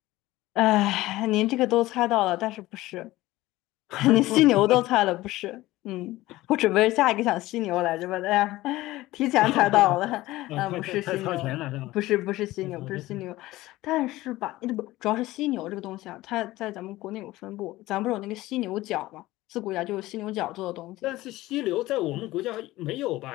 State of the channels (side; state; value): right; quieter; 17.6 dB